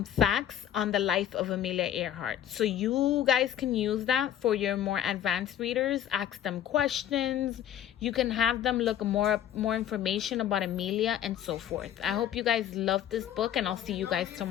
facts on the life of Amelia Earhart. So you guys can use that for your more advanced readers. Ask them questions. You can have them look more information about Amelia and so forth. I hope you guys love this book, and I'll see you guys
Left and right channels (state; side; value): quieter; right; 10.8 dB